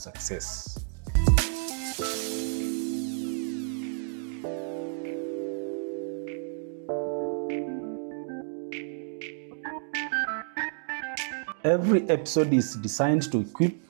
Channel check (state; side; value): silent; left; digital silence